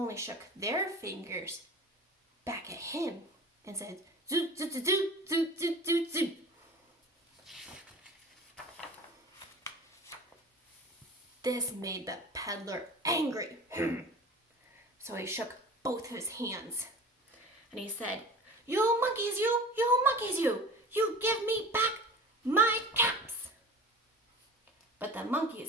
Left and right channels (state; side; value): normal; both; correlation 0.37